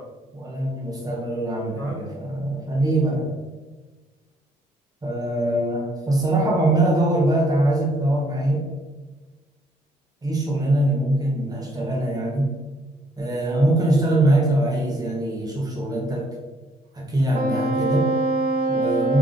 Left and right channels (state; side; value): normal; both; correlation 0.66